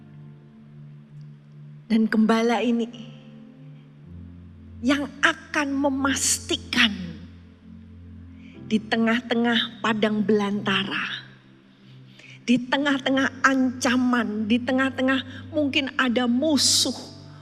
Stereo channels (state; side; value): identical; both; correlation 1.00